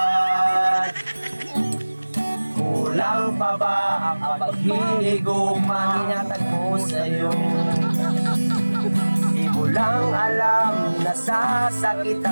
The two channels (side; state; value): both; inverted; correlation -1.00